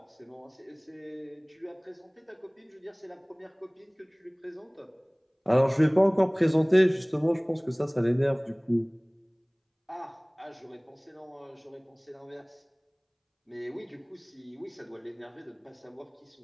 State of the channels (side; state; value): both; identical; correlation 1.00